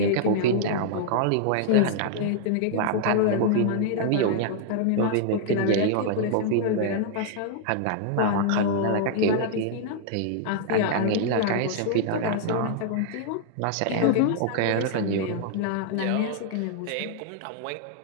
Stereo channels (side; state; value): both; different; correlation -0.01